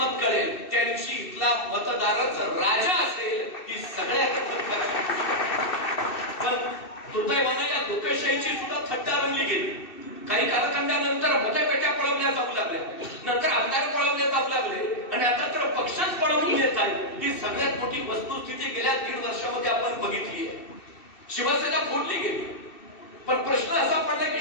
कळेल त्या दिवशी इथला मतदारच राजा असेल. ही सगळ्यात पण दुर्दैवानं या लोकशाहीची सुद्धा थट्टा रंगली गेली. काही कालखंडानंतर मतपेट्या पळवल्या जाऊ लागल्या, नंतर आमदार पळवले जाऊ लागले, आणि आता तर पक्षच पळवून येत आहे. ही सगळ्यात मोठी वस्तुस्थिती गेल्या 1.5 वर्षामध्ये आपण बघितली आहे. शिवसेना फोडली गेली, पण प्रश्न असा पडला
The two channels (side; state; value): right; late; 2.7 ms